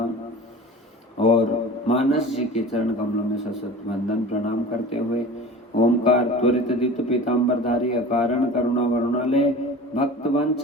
और मानस जी के चरण कमलों में सशत वंदन प्रणाम करते हुए ओमकार त्वरित द्युत पीताम्बरधारी अकारण करुणा वरुणालय भक्त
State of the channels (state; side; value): normal; both; correlation 0.37